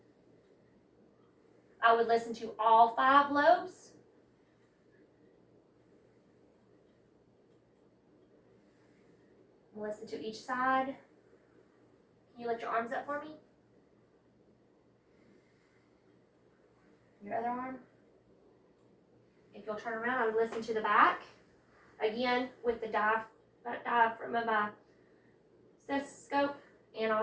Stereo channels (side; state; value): both; identical; correlation 1.00